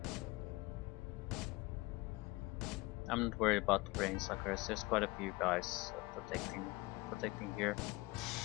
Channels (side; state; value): right; quieter; 22.5 dB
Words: I'm not worried about the brain suckers. There's quite a few guys protecting here.